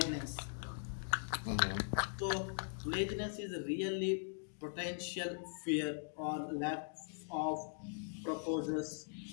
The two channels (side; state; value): right; silent; digital silence